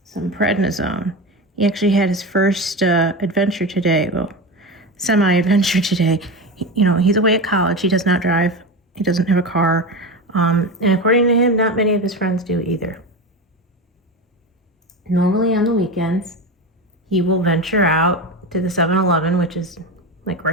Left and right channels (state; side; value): normal; both; correlation 0.22